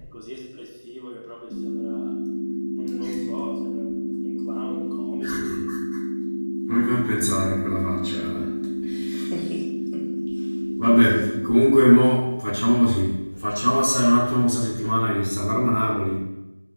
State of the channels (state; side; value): inverted; both; correlation -1.00